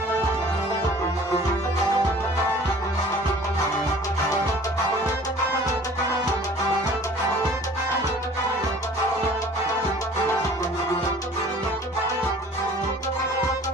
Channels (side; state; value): both; normal; correlation 0.49